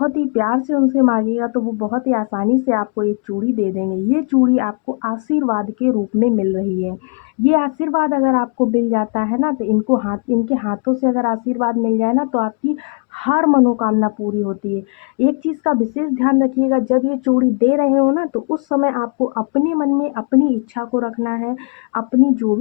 ही प्यार से उनसे मांगिएगा तो वो बहुत ही आसानी से आपको एक चूड़ी दे देंगे। ये चूड़ी आपको आशीर्वाद के रूप में मिल रही है। ये आशीर्वाद अगर आपको मिल जाता है ना तो इनके हाथों से अगर आशीर्वाद मिल जाए ना तो आपकी हर मनोकामना पूरी होती है। एक चीज़ का विशेष ध्यान रखिएगा, जब ये चूड़ी दे रहे हो ना तो उस समय आपको अपने मन में अपनी इच्छा को रखना है। अपनी जो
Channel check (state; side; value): quieter; right; 39.4 dB